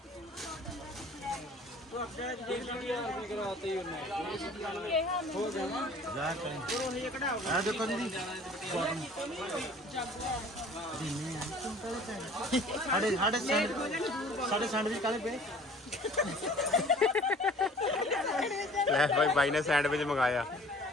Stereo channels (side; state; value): both; normal; correlation 0.49